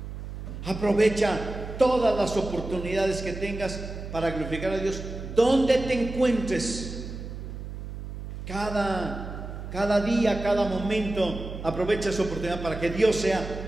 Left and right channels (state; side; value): noise; right; hum, 9 dB below the sound